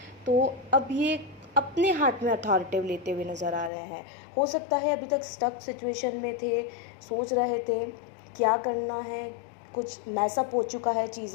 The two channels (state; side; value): drops out; right; at 3.7 s